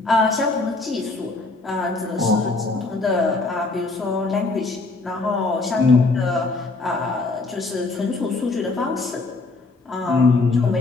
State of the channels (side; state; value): right; quieter; 3.5 dB